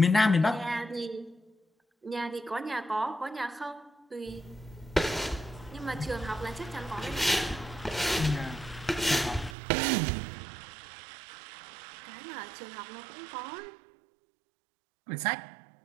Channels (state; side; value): drops out; left; at 9.6 s